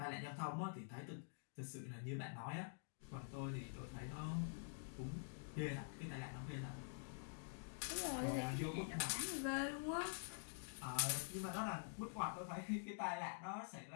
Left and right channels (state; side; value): silent; right; digital silence